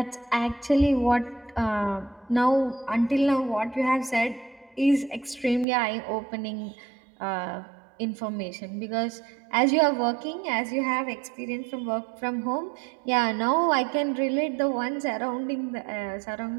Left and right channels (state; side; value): drops out; left; at 5.7 s